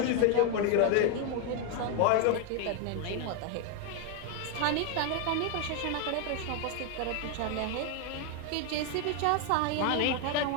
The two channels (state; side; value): different; both; correlation 0.01